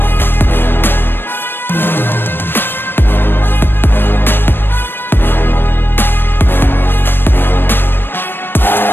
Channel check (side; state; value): right; late; 0.098 ms